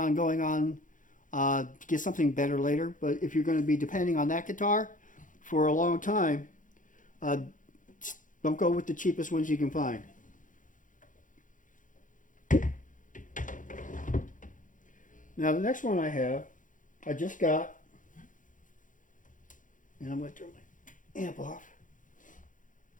going on get something better later. But if you're going to be depending on that guitar for a long time, uh, don't go with the cheapest ones you can find. Now the next one I have, I just got, and I'm going to turn my amp off.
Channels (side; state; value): right; late; 0.38 ms